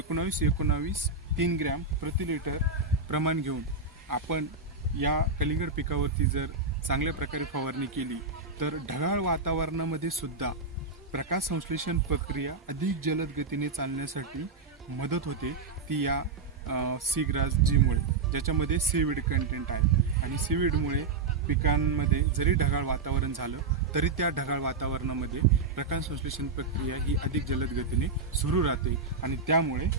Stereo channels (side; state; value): left; quieter; 4.1 dB